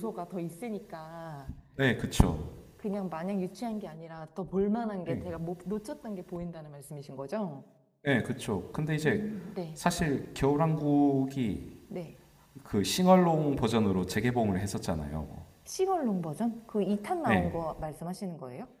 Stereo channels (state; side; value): identical; both; correlation 1.00